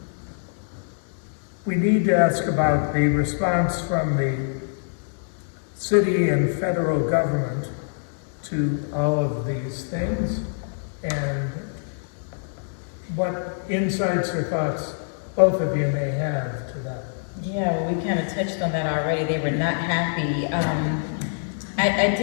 We need to ask about the response from the city and federal government to all of these things, and what insights or thoughts both of you may have to that. Yeah, well, we kind of touched on that already. They were not happy. I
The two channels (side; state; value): right; silent; 62 dB below the other